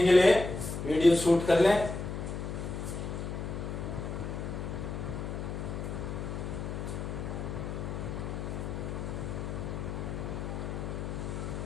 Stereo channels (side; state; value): left; noise; hum, 5 dB below the sound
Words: लिए वीडियो शूट कर लें।